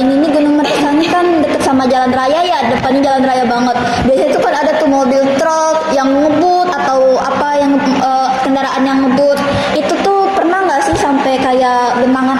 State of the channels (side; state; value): both; identical; correlation 1.00